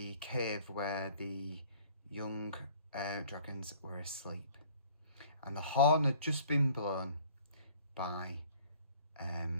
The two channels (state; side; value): inverted; both; correlation -0.54